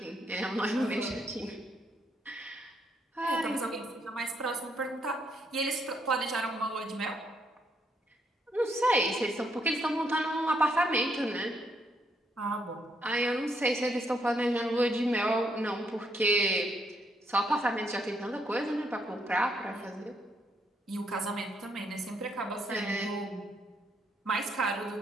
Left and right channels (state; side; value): normal; both; correlation 0.75